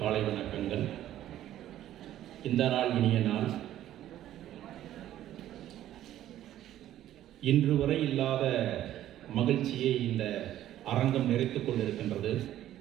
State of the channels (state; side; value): quieter; left; 12.7 dB